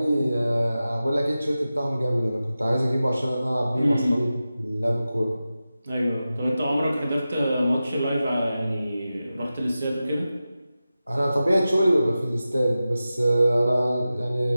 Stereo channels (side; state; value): both; inverted; correlation -0.94